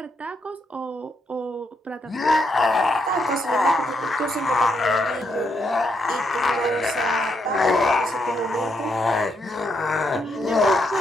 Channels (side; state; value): both; normal; correlation 0.78